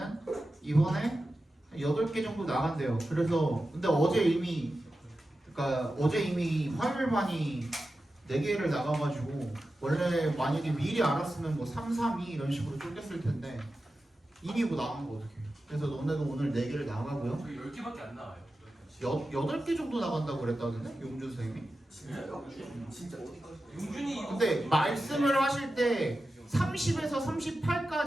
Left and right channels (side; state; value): both; normal; correlation 0.93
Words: 이번에 8개 정도 나간대요. 그래서 근데 어제 이미 화요일반이 4개를 나가가지고 원래 만약에 미리 알았으면 뭐 3, 3, 2 이런 식으로 쪼갰을 텐데 이미 뭐 나간 거 어떡해. 그래서 너네도 오늘 4개를 나가고요. 저희 10개밖에 안 나와요. 8개 정도 나간다고 그랬다던데? 용준 선생님이? 진짜요? 진짜 어디까지? 용준이 이거 근데 말씀을 하실 때 30에서